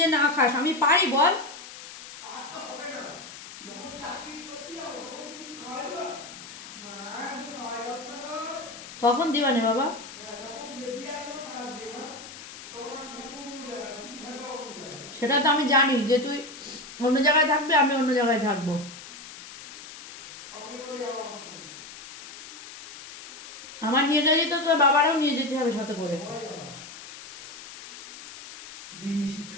না খাস আমি পারি বল? তখন দিবা না বাবা। সেটা তো আমি জানি যে তুই অন্য জায়গায় থাকবি, আমি অন্য জায়গায় থাকবো। আমার নিয়ে গেলে তো তোর বাবারাও নিয়ে যেতে হবে সাথে করে।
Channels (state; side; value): noise; left; hiss, 14 dB below the sound